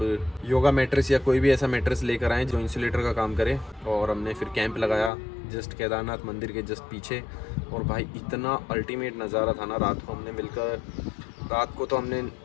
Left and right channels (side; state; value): right; drops out; at 5.1 s